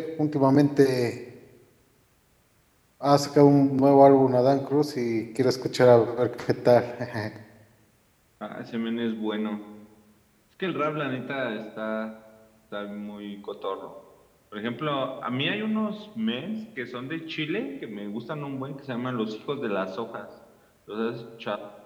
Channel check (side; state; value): both; identical; correlation 1.00